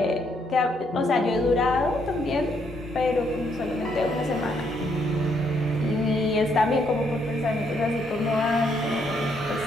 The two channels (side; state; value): both; normal; correlation 0.73